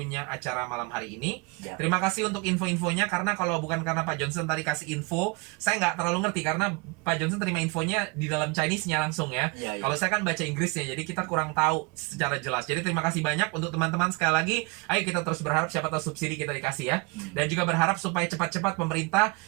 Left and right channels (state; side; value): quieter; left; 28.3 dB